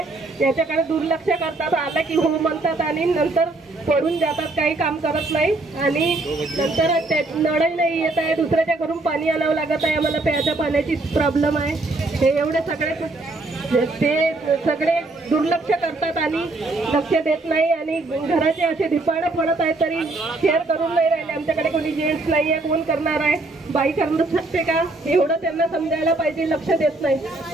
याच्याकडे दुर्लक्ष करतात। आला की हो म्हणतात आणि नंतर पडून जातात, काही काम करत नाही आणि नंतर नळही नाही येत आहे, दुसऱ्याच्या घरून पाणी आणावं लागत आहे। आम्हाला प्यायच्या पाण्याची प्रॉब्लेम आहे। हे एवढे सगळे दुर्लक्ष करतात आणि लक्ष देत नाही आणि घराचे असे धिपाडे पडत आहेत तरी केअर करून नाही राहिले। आमच्याकडे कोणी जेंट्स नाही आहे, कोण करणार आहे? बाई करू शकते का? एवढं त्यांना समजायला पाहिजे, लक्ष देत नाही।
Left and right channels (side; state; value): left; quieter; 3.0 dB